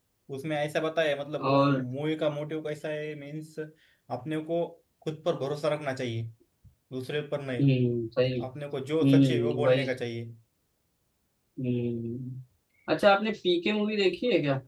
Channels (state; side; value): identical; both; correlation 1.00